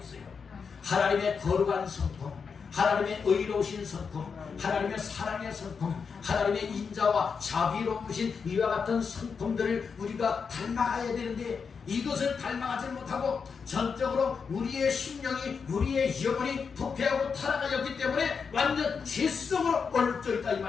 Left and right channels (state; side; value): quieter; right; 5.8 dB